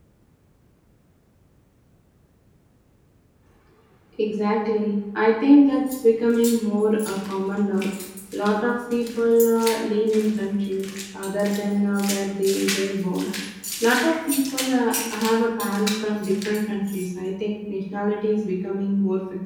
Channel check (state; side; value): identical; both; correlation 1.00